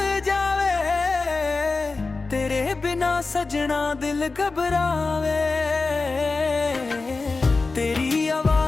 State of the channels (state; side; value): quieter; right; 3.9 dB